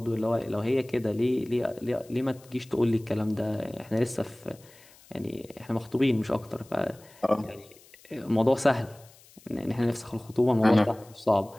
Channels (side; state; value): left; noise; hiss, 25 dB below the sound